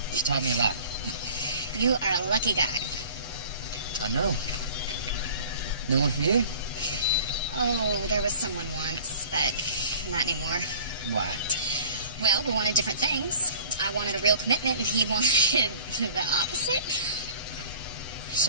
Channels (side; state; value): both; inverted; correlation -0.47